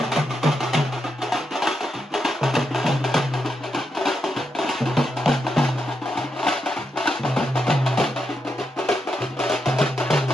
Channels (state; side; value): normal; both; correlation 0.83